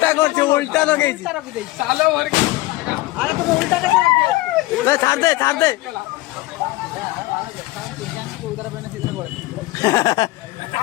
করছে উল্টা লগাইছি চালো ভর আরে তুমি উল্টাটা করে দিও ছাড় দে উদার পেনে সিধা করে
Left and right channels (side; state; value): right; quieter; 19.5 dB